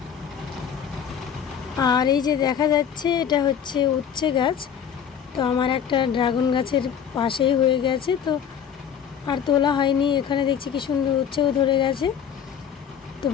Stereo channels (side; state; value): right; quieter; 8.1 dB